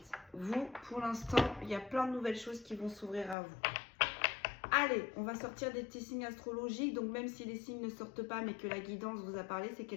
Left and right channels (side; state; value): right; drops out; at 3.4 s